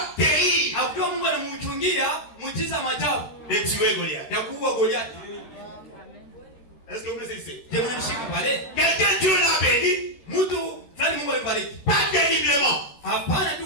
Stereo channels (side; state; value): right; late; 13 ms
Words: terrible de tuer Goliath. Est-ce que vous le savez? Quelqu'un Dieu l'a béni, pas terriblement, pas